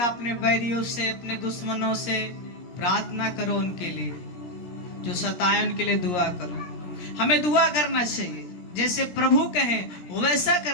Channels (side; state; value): right; late; 17 ms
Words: अपने बैरियों से, अपने दुश्मनों से प्रार्थना करो, उनके लिए जो सताए उनके लिए दुआ करो। हमें दुआ करना चाहिए, जैसे प्रभु कहें वैसा